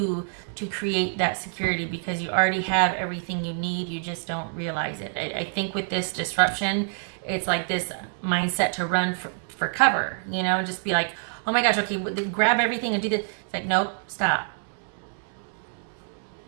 to create that security, because you already have everything you need. You just don't realize it. I think with this disruption, it's like this mindset to run for cover, you know, just be like, oh my gosh, okay, grab everything and do this. It's like, nope, stop.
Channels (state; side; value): silent; left; digital silence